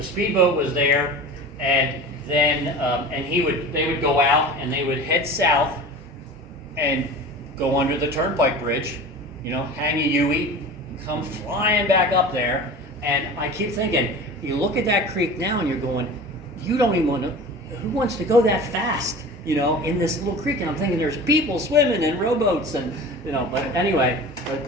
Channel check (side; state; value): both; normal; correlation 0.36